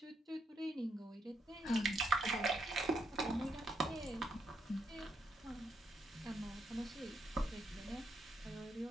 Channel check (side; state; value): both; normal; correlation 0.77